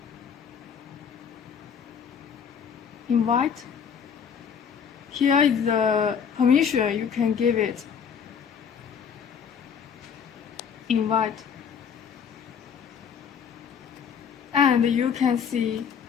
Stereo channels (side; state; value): right; quieter; 7.2 dB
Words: Invite. Here is the permission you can give it. Invite. And you can see